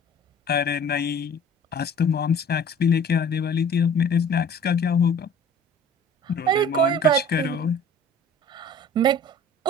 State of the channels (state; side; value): normal; both; correlation 0.46